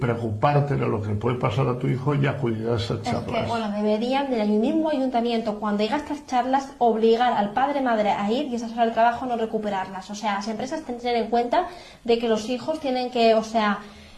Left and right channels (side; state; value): both; identical; correlation 1.00